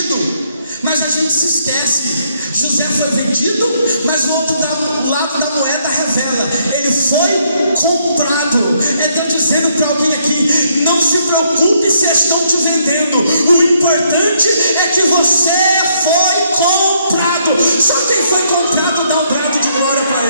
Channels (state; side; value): inverted; both; correlation -0.72